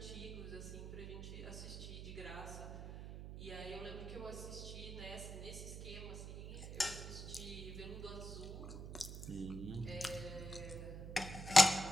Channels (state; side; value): noise; right; hum, 8 dB below the sound